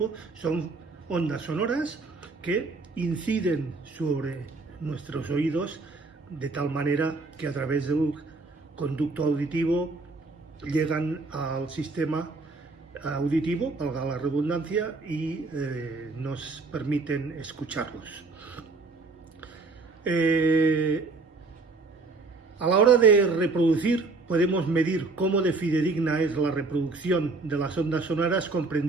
son ondas sonoras que inciden sobre nuestros oídos de tal manera que a través del conducto auditivo llegan al sistema auditivo, valga la redundancia, y nos permiten escucharlos. A la hora de reproducir, podemos medir cómo de fidedigna es la reproducción de las ondas sonoras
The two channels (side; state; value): left; quieter; 3.8 dB